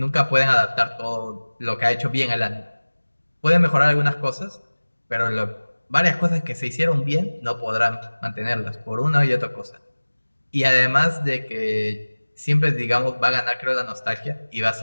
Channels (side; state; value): both; inverted; correlation -1.00